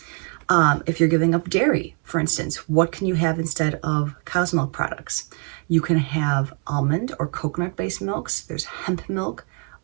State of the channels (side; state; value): left; quieter; 36.4 dB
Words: If you're giving up dairy, for instance, what can you have instead of cow's milk products? You can have almond or coconut-based milks. There's hemp milk,